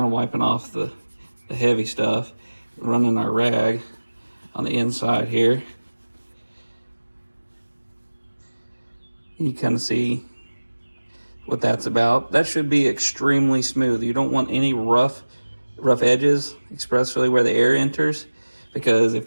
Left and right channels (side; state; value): both; inverted; correlation -1.00